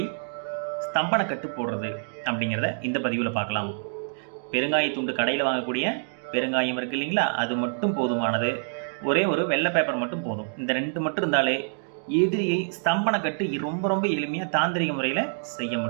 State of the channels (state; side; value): silent; left; digital silence